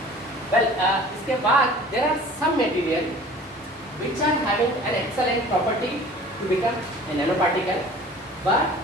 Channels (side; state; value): both; normal; correlation 0.46